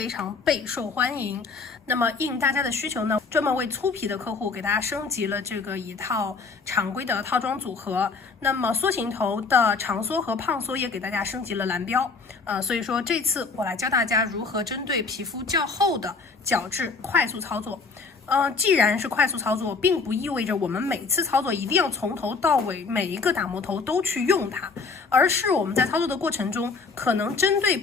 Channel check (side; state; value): right; quieter; 4.5 dB